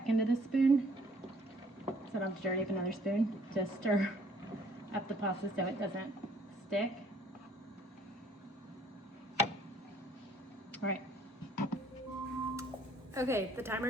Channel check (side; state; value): both; normal; correlation 0.60